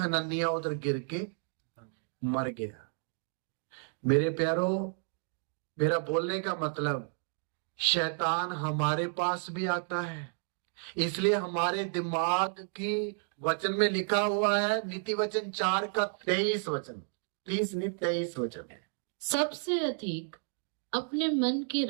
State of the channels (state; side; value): silent; left; 57 dB below the other